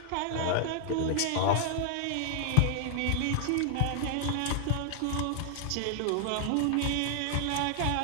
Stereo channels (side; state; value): both; different; correlation 0.00